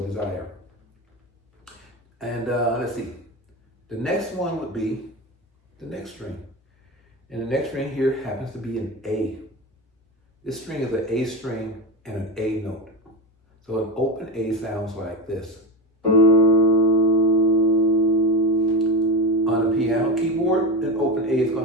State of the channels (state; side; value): normal; both; correlation 0.19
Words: desire. And let's see. The next one would be the next string. And the next string here happens to be an A. This string is an A string and an A note. So an open A sounds like this. On a piano keyboard, an open A is